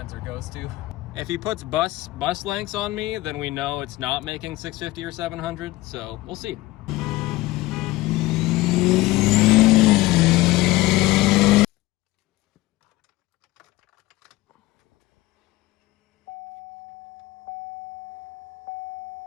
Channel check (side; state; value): right; quieter; 18.6 dB